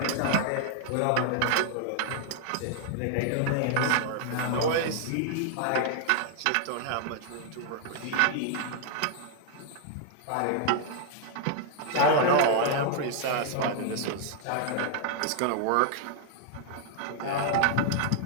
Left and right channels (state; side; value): different; both; correlation 0.00